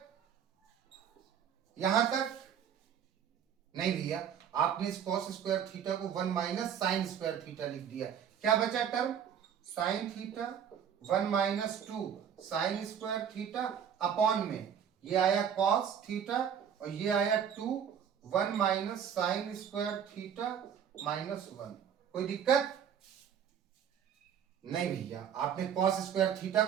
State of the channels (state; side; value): quieter; left; 8.4 dB